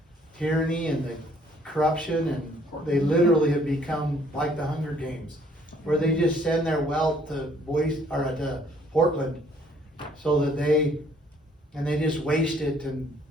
tyranny and the corruption, and they literally have become like the Hunger Games, where they just send their wealth to to Portland, so that they just waste it in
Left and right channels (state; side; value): normal; both; correlation 0.62